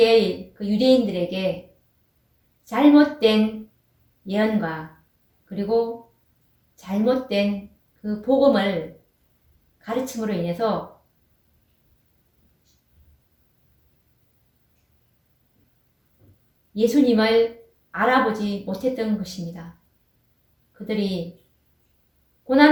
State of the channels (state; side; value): identical; both; correlation 1.00